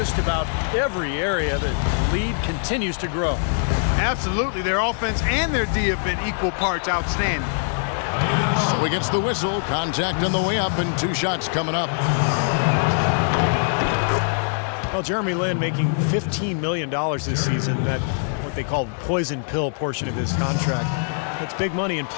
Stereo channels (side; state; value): right; silent; digital silence